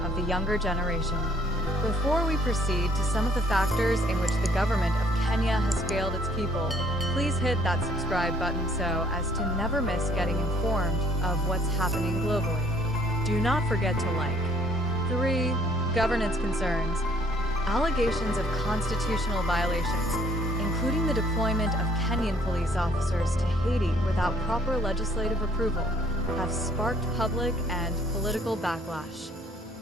of the younger generation. Before we proceed to some of the factors in which the government of Kenya has failed its people, please hit that subscribe button so as to never miss getting informed of what's happening globally. Do not forget to like. 3. Governance concerns. Allegations of constitutional violations, including the deployment of Kenyan police officers to Haiti without proper legislative approval, have sparked public and political backlash.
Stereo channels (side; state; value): both; normal; correlation 0.62